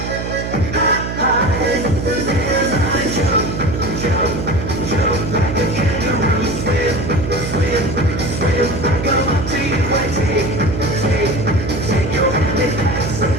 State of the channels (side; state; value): right; noise; hum, 5 dB below the sound